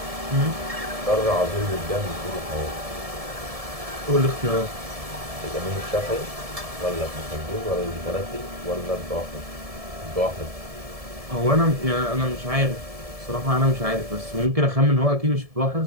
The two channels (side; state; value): left; late; 1.7 ms